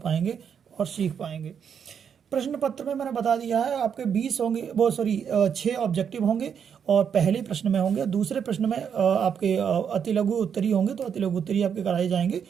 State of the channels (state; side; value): quieter; left; 7.6 dB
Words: और सीख पाएंगे। प्रश्न पत्र में मैंने बता दिया है आपके 20 होंगे, वो सॉरी 6 ऑब्जेक्टिव होंगे, और पहले प्रश्न में होंगे। दूसरे प्रश्न में आपके अति लघु उत्तरी होंगे, तो अति लघु उत्तरी आपके कराए जाएंगे।